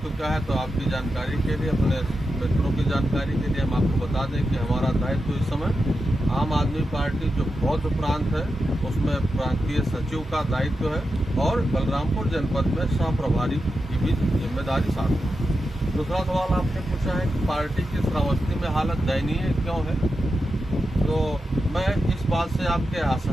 क्या है, तो आपकी जानकारी के लिए, अपने मित्रों की जानकारी के लिए हम आपको बता दें कि हमारा दायित्व इस समय आम आदमी पार्टी जो बौद्ध प्रांत है उसमें प्रांतीय सचिव का दायित्व है और बलरामपुर जनपद में सह प्रभारी की भी जिम्मेदारी साथ है। दूसरा सवाल आपने पूछा है कि पार्टी की श्रावस्ती में हालत दयनीय क्यों है, तो मैं इस बात से आपके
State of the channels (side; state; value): both; normal; correlation 0.89